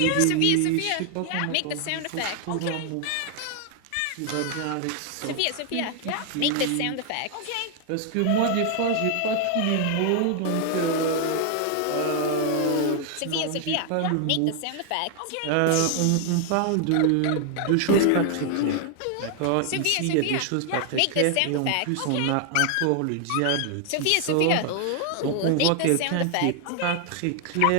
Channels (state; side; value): different; both; correlation 0.00